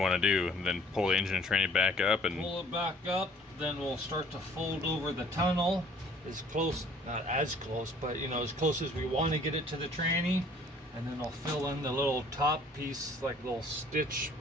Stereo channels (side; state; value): both; normal; correlation 0.55